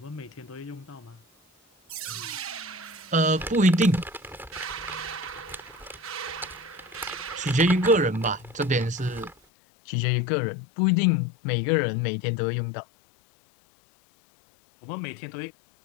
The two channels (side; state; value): right; drops out; at 9.3 s